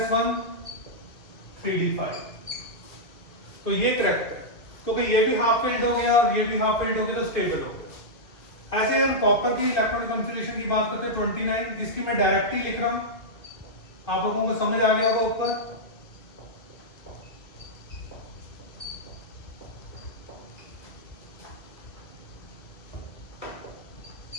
3d5। तो ये करेक्ट है क्योंकि ये भी हाफ फिल्ड हो गया और ये भी हाफ फिल्ड हो गया तो स्टेबल हो गया। ऐसे अगर कॉपर की इलेक्ट्रॉनिक कॉन्फ़िगरेशन की बात करते हैं 29, इसकी मैं डायरेक्ट ही लिख रहा हूं, आप लोगों को समझ आ गया होगा ऊपर।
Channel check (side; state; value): right; late; 2.0 ms